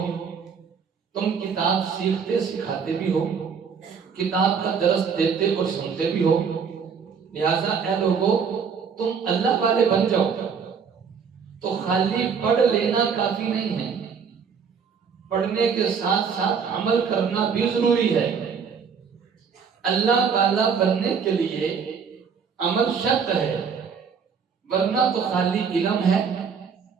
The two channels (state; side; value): quieter; left; 6.3 dB